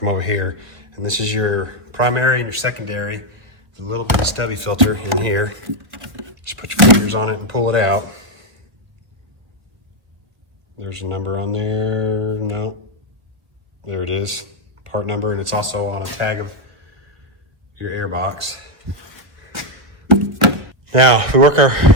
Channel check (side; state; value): left; late; 1.0 ms